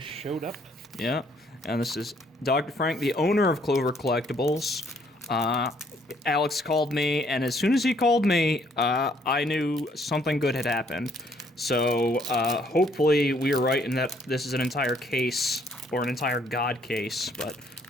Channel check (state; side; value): normal; both; correlation 0.66